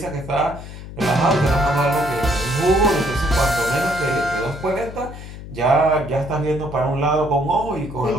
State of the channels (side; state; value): left; noise; hum, 12 dB below the sound